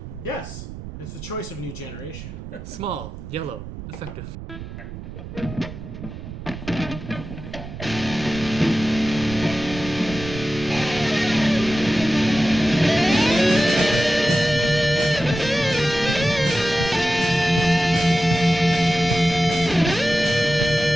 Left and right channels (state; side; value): noise; right; rumble, 11 dB below the sound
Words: yes, it's the choice of new generation. Small, yellow, effective.